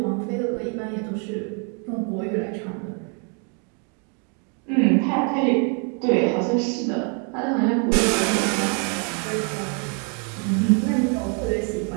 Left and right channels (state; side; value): quieter; left; 38.8 dB